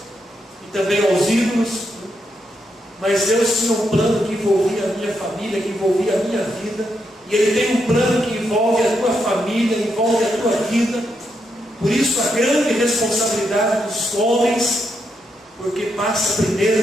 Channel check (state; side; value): normal; both; correlation 0.81